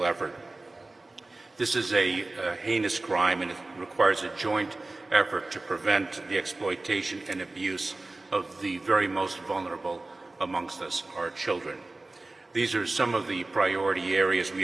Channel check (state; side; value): quieter; left; 3.1 dB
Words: effort. This is a heinous crime, and it requires a joint effort to prevent the exploitation and abuse of the very most vulnerable amongst us, our children. These are some of the priority areas